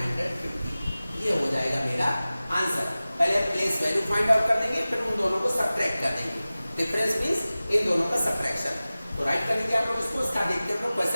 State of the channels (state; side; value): inverted; both; correlation -0.97